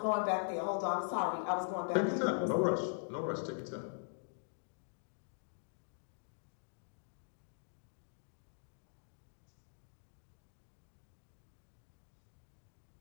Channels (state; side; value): silent; right; digital silence